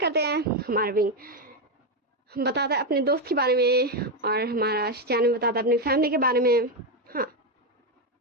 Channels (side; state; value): both; normal; correlation 0.07